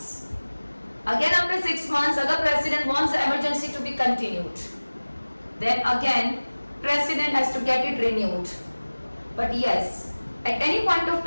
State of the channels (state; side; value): inverted; both; correlation -1.00